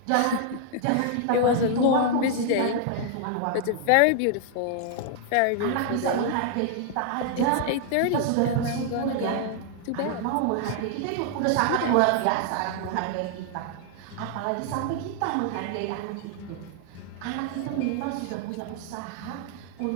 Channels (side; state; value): both; different; correlation 0.00